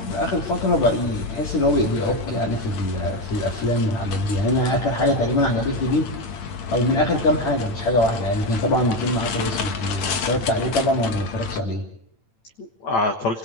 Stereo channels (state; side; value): late; right; 8.8 ms